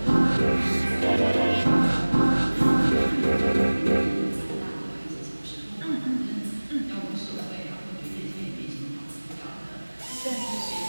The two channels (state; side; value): inverted; both; correlation -1.00